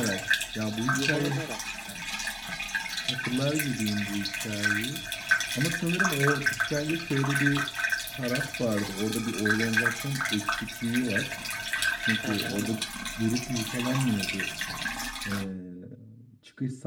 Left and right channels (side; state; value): both; identical; correlation 1.00